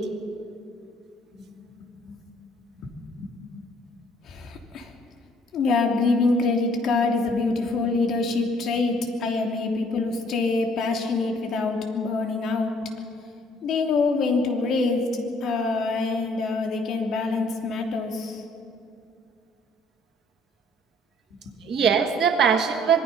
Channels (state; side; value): normal; both; correlation 0.60